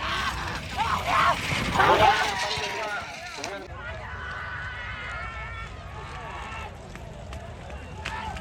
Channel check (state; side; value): identical; both; correlation 1.00